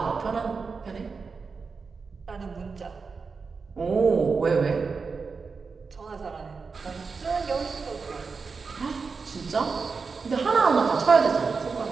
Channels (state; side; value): quieter; left; 4.8 dB